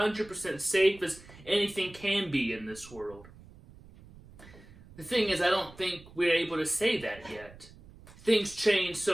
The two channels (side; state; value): right; noise; rumble, 21 dB below the sound